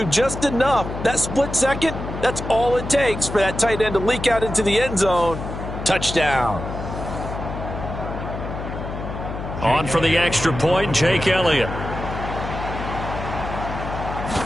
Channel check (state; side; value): noise; left; hum, 7 dB below the sound